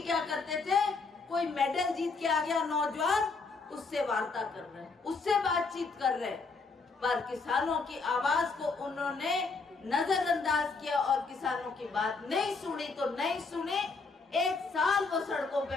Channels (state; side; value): quieter; right; 4.2 dB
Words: क्या करते थे, कोई मेडल जीत के आ गया नौजवान, उससे वार्ता कर रहे हैं, उससे बातचीत कर रहे हैं, पर किसानों की आवाज को उन्होंने नजरअंदाज किया और किसानों की बात नहीं सुनी तो नहीं सुनी। 1 साल वो सड़कों